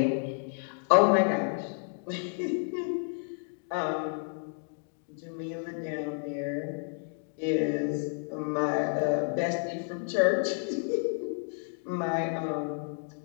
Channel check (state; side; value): silent; right; 57 dB below the other